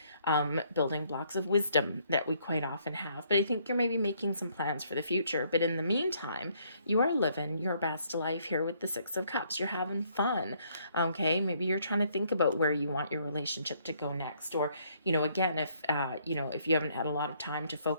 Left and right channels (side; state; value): both; inverted; correlation -0.67